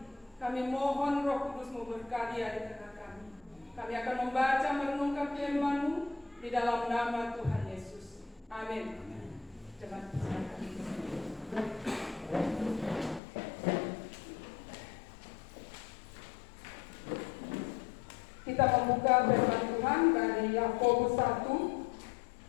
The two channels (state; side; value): drops out; right; at 13.2 s